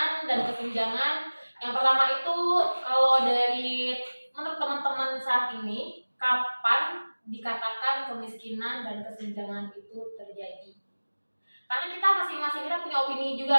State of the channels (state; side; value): inverted; both; correlation -1.00